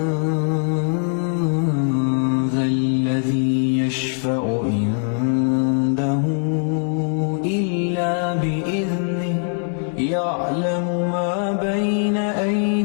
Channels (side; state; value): right; silent; 59 dB below the other